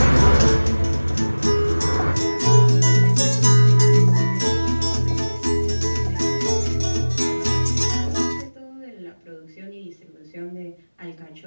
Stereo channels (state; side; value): inverted; both; correlation -1.00